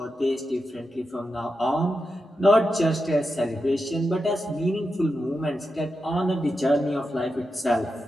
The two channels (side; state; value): both; normal; correlation 0.89